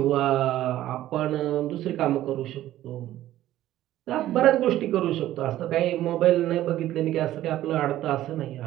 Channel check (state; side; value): quieter; left; 13.9 dB